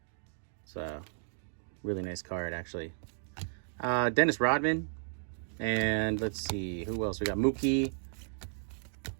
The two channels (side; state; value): left; silent; digital silence